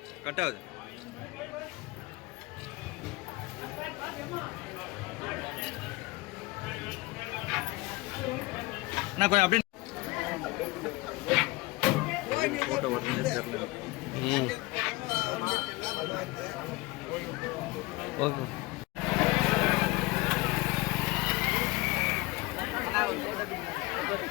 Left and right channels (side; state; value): right; quieter; 22.2 dB